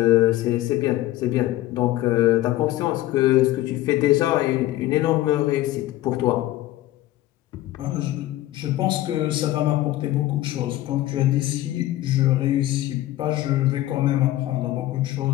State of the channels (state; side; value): quieter; right; 15.5 dB